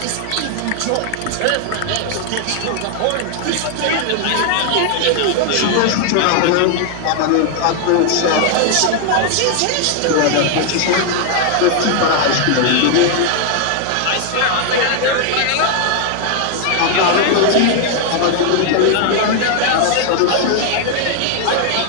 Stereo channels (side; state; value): both; different; correlation 0.00